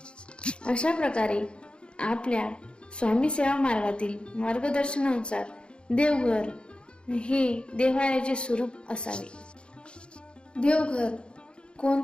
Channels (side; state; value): right; late; 0.055 ms